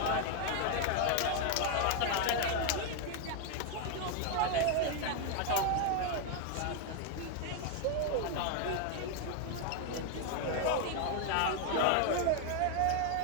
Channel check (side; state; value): both; different; correlation 0.01